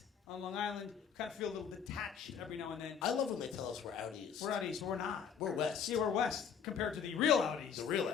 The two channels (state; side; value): quieter; right; 7.3 dB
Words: on Long Island, kind of feel a little detached every now and then. I love when they tell us we're out east. We're out east, we're not. We're west. Yeah, we're west, compared to the real out east. The real